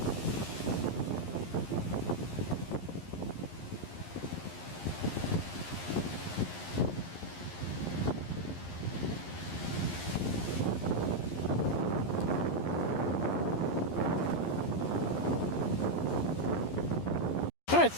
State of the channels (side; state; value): right; late; 11 ms